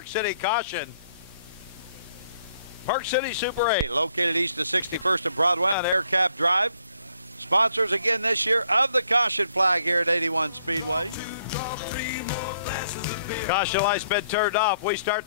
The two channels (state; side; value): inverted; both; correlation -0.68